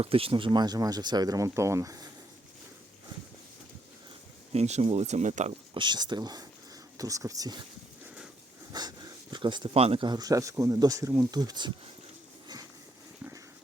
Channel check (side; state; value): both; normal; correlation 0.74